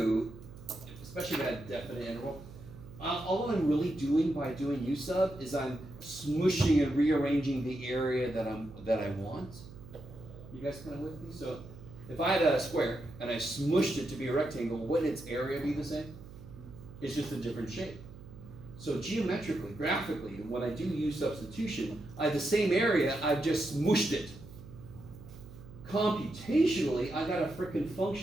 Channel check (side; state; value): right; noise; hum, 16 dB below the sound